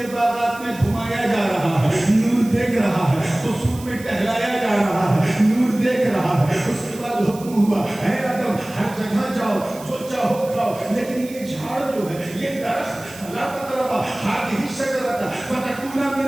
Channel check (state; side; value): noise; right; hiss, 18 dB below the sound